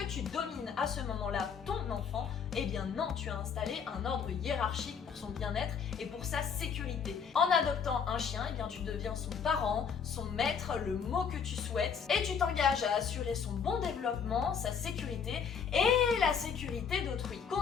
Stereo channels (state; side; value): quieter; right; 6.7 dB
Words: tu domines à ce moment-là ton enfant? Non, tu as installé un ordre hiérarchique pour son bien-être et pour sa sécurité. En adoptant un chien, tu deviens son parent, son maître, le mot que tu souhaites, et tu t'engages à assurer son bon développement, sa sécurité et la sécurité d'autrui.